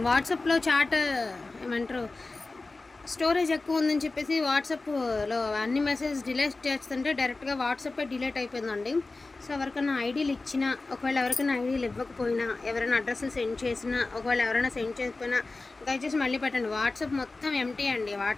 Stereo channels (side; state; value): right; quieter; 3.5 dB